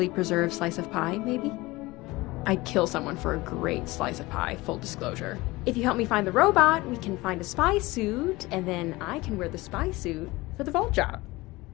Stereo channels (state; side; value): quieter; right; 21.0 dB